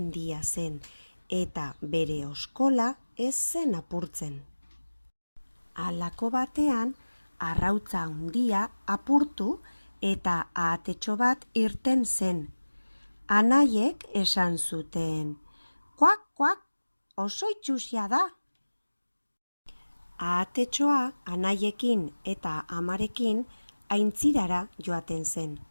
zen eta bere oskola ez zen apurtzen. Halako batean arrautza handia apurtu eta ahatetxo bat irten zen. Anaiek esan zuten, "Kuak, kuak, oso itsusia da." Ahatetxoa anaiekin eta amarekin aintzirara joaten zen.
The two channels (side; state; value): both; inverted; correlation -1.00